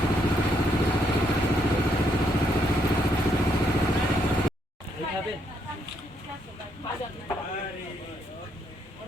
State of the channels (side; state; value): both; normal; correlation 0.74